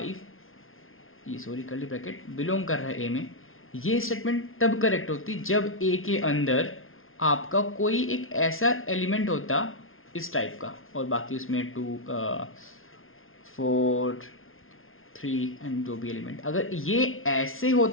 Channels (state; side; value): late; right; 0.60 ms